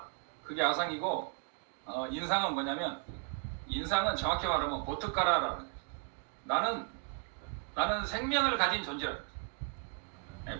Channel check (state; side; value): quieter; left; 38.6 dB